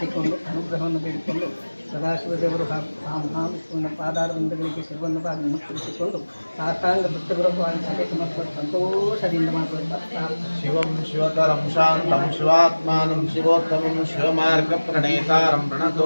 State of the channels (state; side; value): inverted; both; correlation -1.00